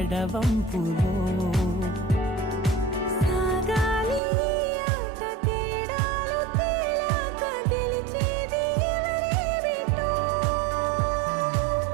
సాగాలి ఆట తేడాలు తేలాక గెలిచేది ఎవరే బిడ్డో.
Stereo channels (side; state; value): left; drops out; at 4.2 s